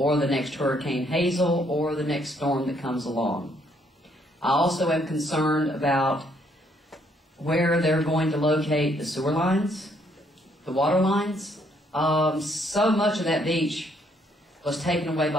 the next Hurricane Hazel or the next storm that comes along. I also am concerned about where they're going to locate the sewer lines, the water lines. So much of that beach was taken away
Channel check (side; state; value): both; normal; correlation 0.69